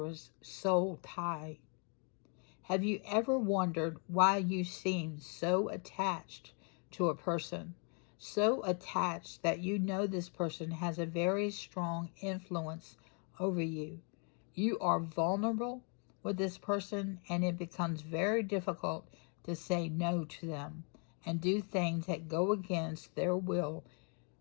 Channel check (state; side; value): quieter; right; 39.2 dB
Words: soul tie. Have you ever wondered why you seem so attached to a person? So attached that you know this person has a very strong influence over you. You are vulnerable with this person, and it becomes very difficult to say no to them and do things that go against their will,